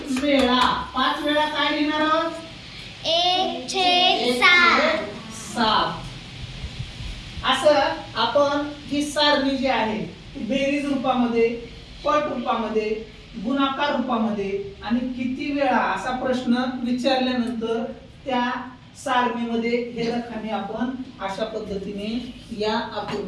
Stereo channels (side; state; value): both; identical; correlation 1.00